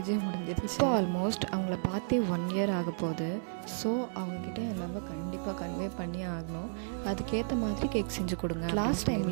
முடிஞ்சிருச்சு. இப்போ ஆல்மோஸ்ட் அவங்கள பார்த்தே 1 இயர் ஆக போகுது. ஸோ அவங்கக்கிட்ட எல்லாமே கண்டிப்பாக கன்வே பண்ணி ஆகணும். அதுக்கேற்ற மாதிரி கேக் செஞ்சு கொடுங்க. லாஸ்ட்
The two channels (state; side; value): silent; left; digital silence